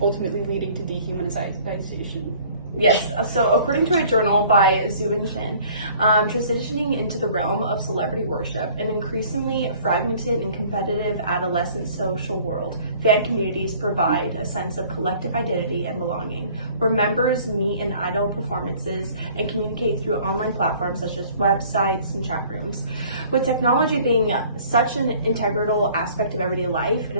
ultimately leading to dehumanization? Yes, so according to a journal by Zhu Shin, transitioning into the realm of celebrity worship, an increasingly fragmented and competitive adolescent social world, fan communities provide a sense of collective identity and belonging, where members meet in idol performances and communicate through online platforms such as websites and chat rooms. With technology being such an integral aspect of everyday life, it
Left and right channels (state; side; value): inverted; both; correlation -0.53